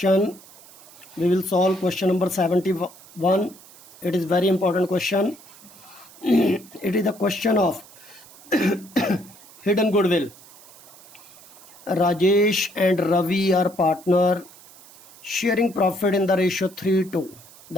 we will solve question number 71. It is very important question. It is the question of hidden goodwill. Rajesh and Ravi are partner, sharing profit in the ratio 3:2.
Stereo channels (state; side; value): noise; right; hiss, 22 dB below the sound